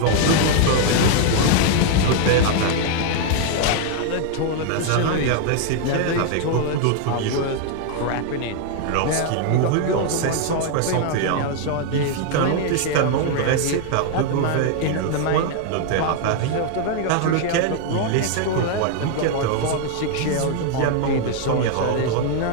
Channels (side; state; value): both; different; correlation 0.00